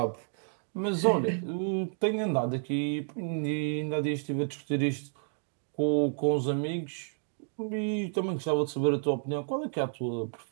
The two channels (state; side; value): silent; left; digital silence